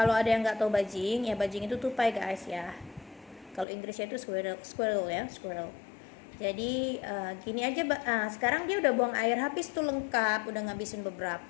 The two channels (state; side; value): drops out; right; at 3.7 s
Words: ada yang nggak tahu bajing, ya bajing itu tupai guys ya. Kalau Inggrisnya itu squirrel ya, squirrel. Jadi gini aja, sekarang dia udah buang air habis tuh lengkap, udah ngabisin